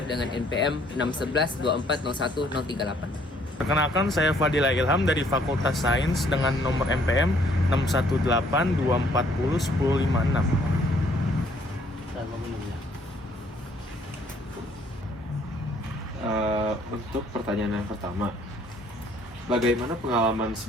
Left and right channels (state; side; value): normal; both; correlation 0.63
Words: dengan NPM 6112401 Perkenalkan, saya Fadila Ilham dari Fakultas Sains dengan nomor MPM 618240106. Dan memenuhinya. Untuk pertanyaan yang pertama, bagaimana pengalaman